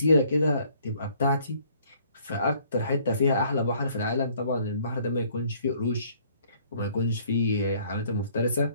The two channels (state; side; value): inverted; both; correlation -0.61